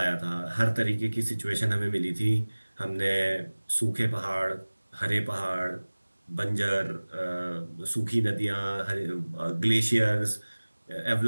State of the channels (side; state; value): both; inverted; correlation -1.00